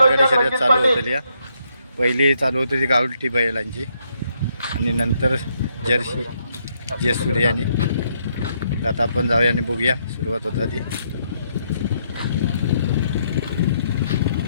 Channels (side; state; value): both; inverted; correlation -0.75